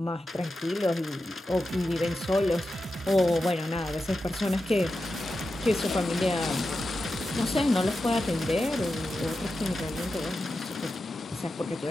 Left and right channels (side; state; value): both; normal; correlation 0.90